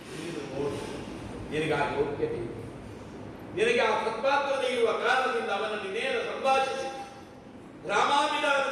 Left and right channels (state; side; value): identical; both; correlation 1.00